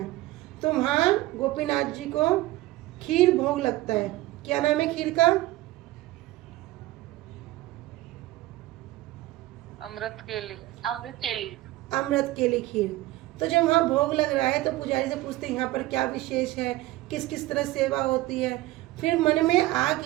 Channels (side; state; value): left; quieter; 17.4 dB